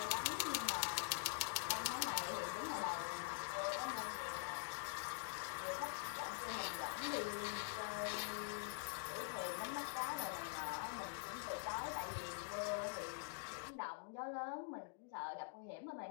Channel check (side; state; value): right; silent; digital silence